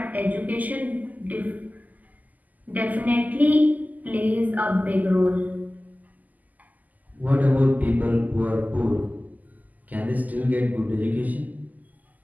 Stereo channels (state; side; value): late; left; 0.080 ms